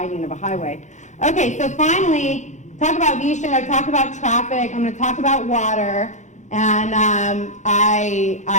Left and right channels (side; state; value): right; late; 0.35 ms